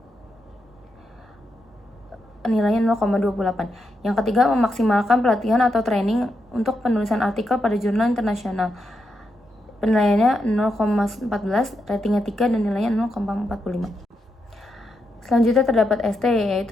nilainya 0,28. Yang ketiga, memaksimalkan pelatihan atau training untuk penulisan artikel pada jurnal internasional. Penilaiannya 0,14, ratingnya 3, dan nilainya 0,45. Selanjutnya terdapat ST,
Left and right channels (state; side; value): normal; both; correlation 0.83